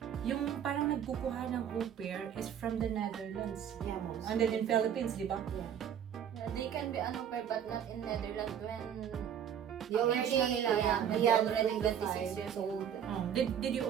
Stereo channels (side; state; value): left; quieter; 9.0 dB